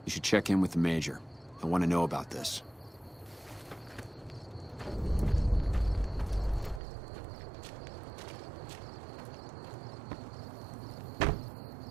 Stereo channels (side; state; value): left; drops out; at 6.8 s